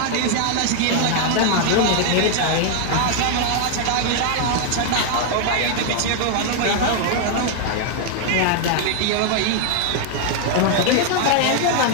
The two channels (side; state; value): both; different; correlation 0.00